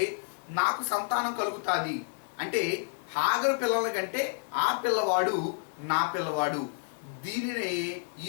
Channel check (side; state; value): right; silent; digital silence